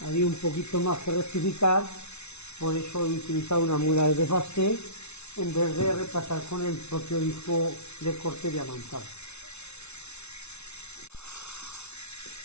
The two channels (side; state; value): right; late; 0.81 ms